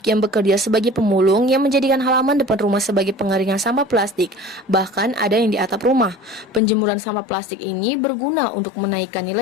yang bekerja sebagai pemulung yang menjadikan halaman depan rumah sebagai pengeringan sampah plastik. Bahkan ada yang di atap rumah. Penjemuran sampah plastik ini berguna untuk menaikkan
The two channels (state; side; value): drops out; right; at 6.6 s